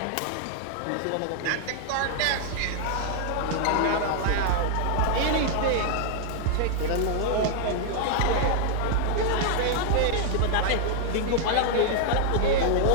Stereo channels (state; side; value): different; both; correlation -0.01